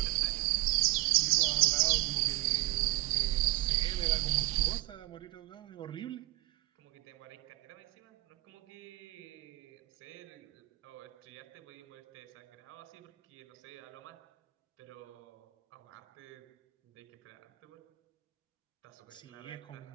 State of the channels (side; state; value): left; quieter; 19.2 dB